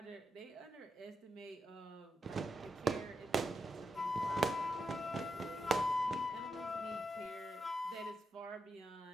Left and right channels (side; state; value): both; normal; correlation 0.85